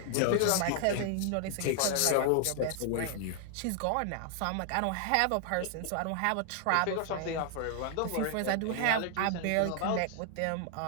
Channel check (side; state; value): both; different; correlation 0.00